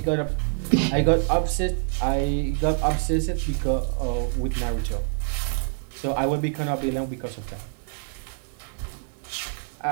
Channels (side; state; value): left; silent; 61 dB below the other